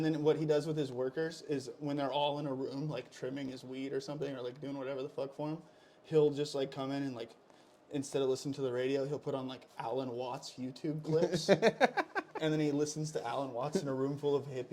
what he does with his workers is when they're all in a room trimming his weed or something or doing whatever the fuck for him, he'll just come in and instead of listening to the radio, he'll put on Alan Watts YouTube clips. And then he listens to Alan Watts in a room full of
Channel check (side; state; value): both; identical; correlation 1.00